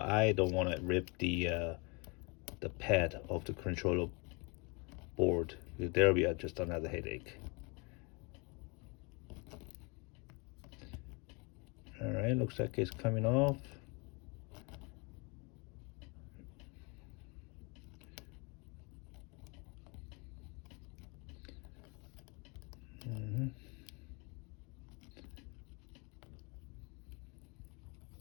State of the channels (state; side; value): quieter; right; 30.5 dB